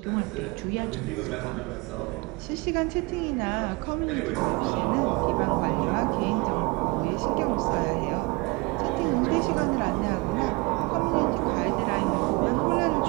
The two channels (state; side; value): quieter; left; 26.4 dB